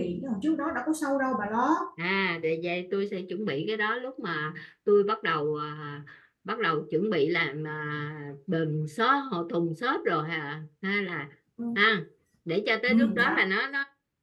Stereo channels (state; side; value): identical; both; correlation 1.00